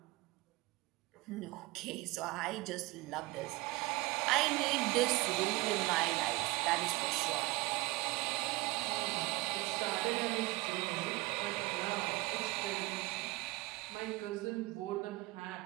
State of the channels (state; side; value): quieter; left; 21.8 dB